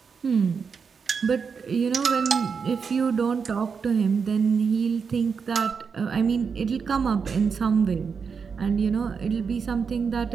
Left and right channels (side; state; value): left; quieter; 5.8 dB